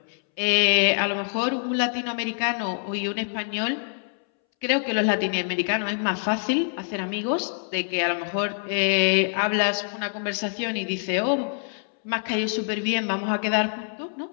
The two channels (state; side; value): silent; right; 62 dB below the other